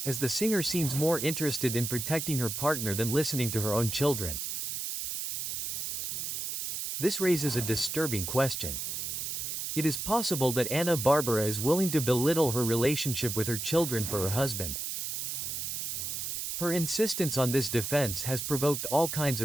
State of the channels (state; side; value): noise; right; hiss, 3 dB below the sound